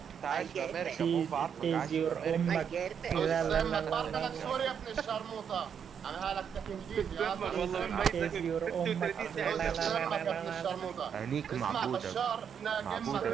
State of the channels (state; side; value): quieter; left; 7.6 dB